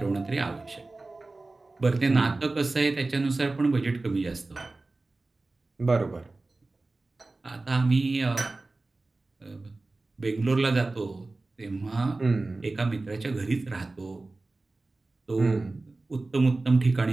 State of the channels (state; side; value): quieter; left; 3.2 dB